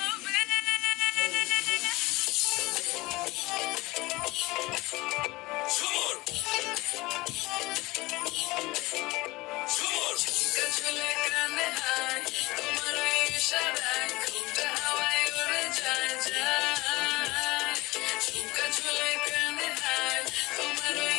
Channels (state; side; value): quieter; right; 21.2 dB